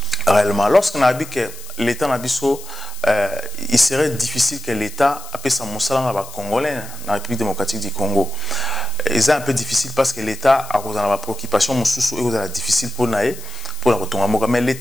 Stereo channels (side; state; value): left; noise; hiss, 16 dB below the sound